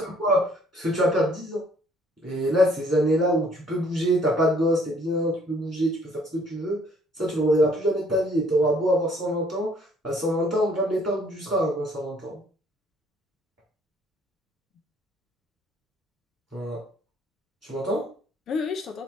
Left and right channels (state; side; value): normal; both; correlation 0.61